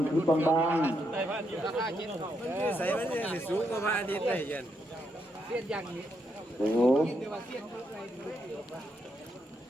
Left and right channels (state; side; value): normal; both; correlation 0.79